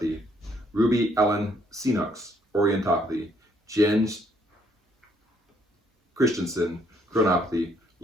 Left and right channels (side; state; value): both; normal; correlation 0.68